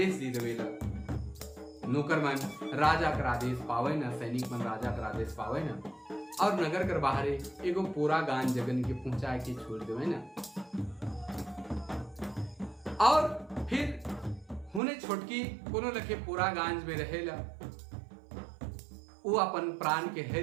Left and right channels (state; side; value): drops out; left; at 14.8 s